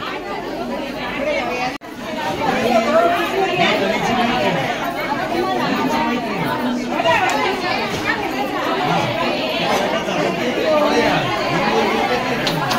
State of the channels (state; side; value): identical; both; correlation 1.00